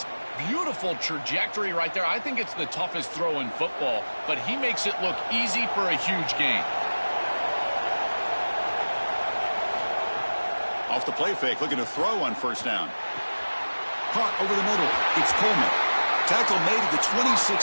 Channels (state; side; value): inverted; both; correlation -1.00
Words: Beautiful trajectory right there. I think it's the toughest throw in football, but he makes it look easy for a huge gain. Off the play fake, looking to throw on 1st down. Caught over the middle. It's Coleman. Tackle made at the